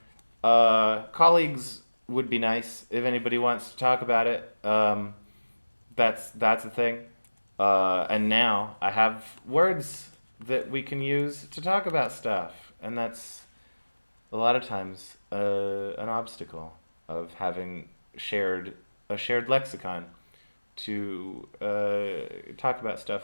Colleagues would be nice if anybody wants to talk about it. That's a thing. And now I have words that we can use to talk about stuff, and that's a lot of times an obstacle of having shared lexicon to talk about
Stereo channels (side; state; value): both; inverted; correlation -1.00